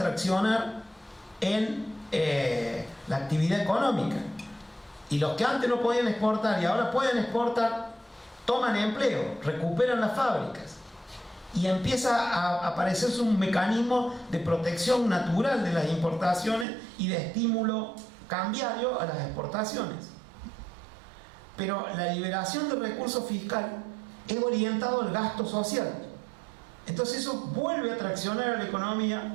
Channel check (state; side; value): drops out; left; at 16.7 s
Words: en la actividad económica. Y los que antes no podían exportar y ahora pueden exportar, toman empleo, recuperan las fábricas. Y empieza a aparecerse un mecanismo de protección natural de las importaciones y de estímulo cambiario a las exportaciones. Pero la liberación de recursos fiscales es orientado al gasto social. Entonces eso vuelve a traccionar a la